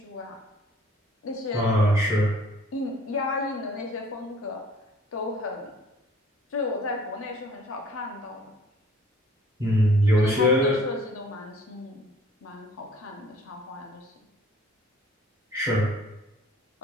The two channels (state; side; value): normal; both; correlation 0.54